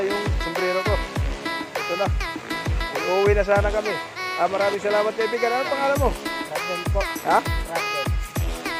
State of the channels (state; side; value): identical; both; correlation 1.00